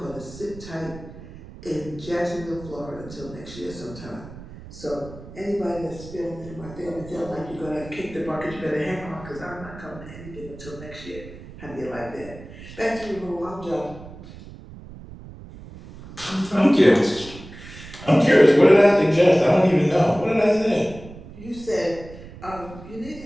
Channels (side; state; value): right; noise; rumble, 16 dB below the sound